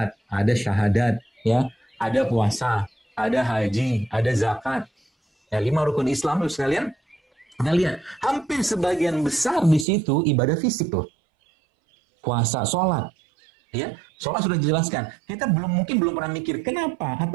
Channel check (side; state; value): left; drops out; at 9.9 s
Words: ada syahadat, ya, ada puasa, ada haji, ada zakat. Ya, 5 rukun Islam, Bapak sekalian. Kita lihat, hampir sebagian besar di situ ibadah fisik loh. Puasa, sholat. Ya, sholat sudah dijelaskan. Kita mungkin belum pernah mikir kenapa